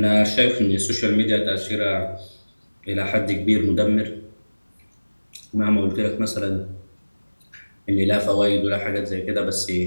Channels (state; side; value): inverted; both; correlation -1.00